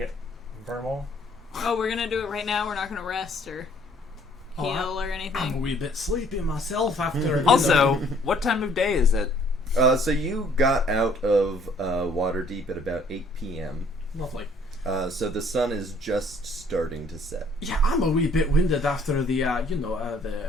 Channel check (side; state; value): both; normal; correlation 0.61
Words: Vermal. Oh, we're gonna do it right now. We're not gonna rest or Oh, heal or I'm a anything. wee bit sleepy myself after. Also, what time of day is it? So you got out of Waterdeep at about 8 p.m. Lovely. So the sun is just starting to set. Yeah, I'm a wee bit winded after the the